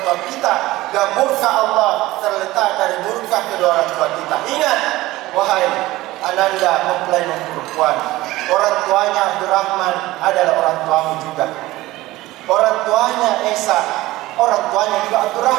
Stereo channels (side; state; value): left; quieter; 18.0 dB